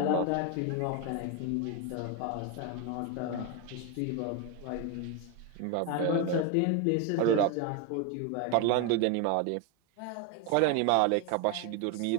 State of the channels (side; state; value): both; different; correlation 0.02